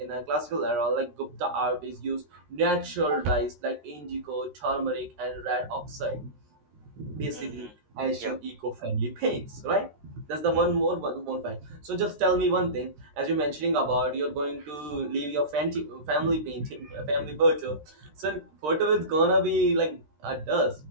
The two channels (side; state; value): left; late; 13 ms